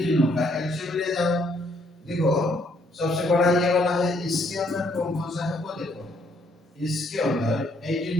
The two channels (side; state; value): both; normal; correlation 0.69